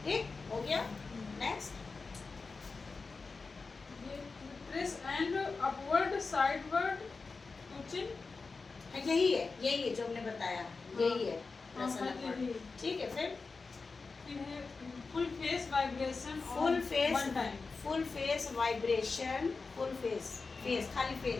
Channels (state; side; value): quieter; right; 4.3 dB